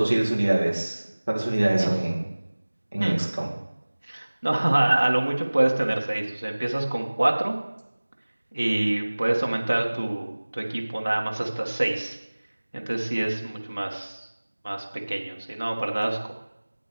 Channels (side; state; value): both; inverted; correlation -1.00